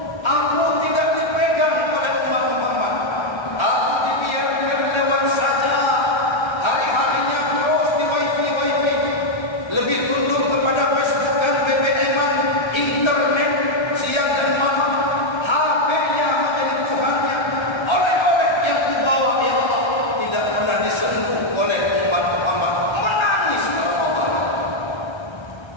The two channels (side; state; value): right; late; 1.3 ms